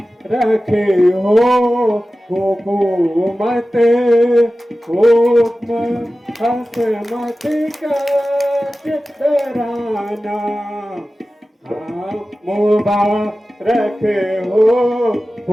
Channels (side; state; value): both; normal; correlation 0.95